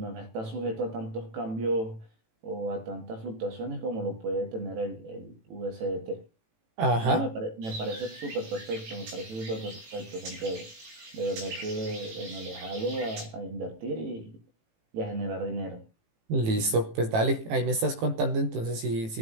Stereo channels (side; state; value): left; late; 18 ms